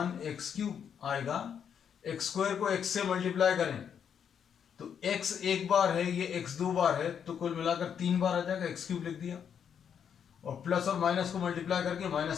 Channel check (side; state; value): right; quieter; 7.9 dB